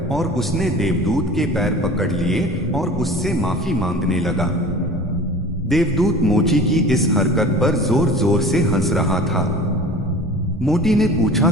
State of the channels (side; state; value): both; normal; correlation 0.41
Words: और उसने देवदूत के पैर पकड़ लिए और उससे माफी मांगने लगा। देवदूत मोची की इस हरकत पर जोर जोर से हंस रहा था। मोटी ने पूछा,